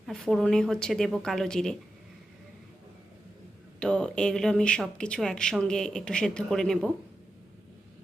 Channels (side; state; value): both; normal; correlation 0.90